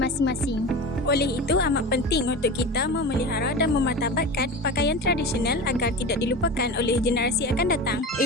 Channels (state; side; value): normal; both; correlation 0.29